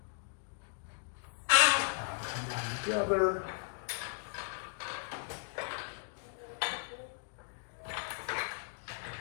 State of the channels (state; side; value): silent; right; digital silence